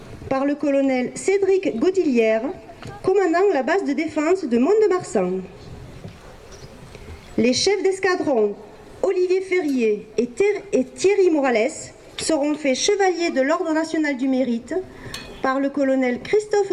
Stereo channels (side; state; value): both; identical; correlation 1.00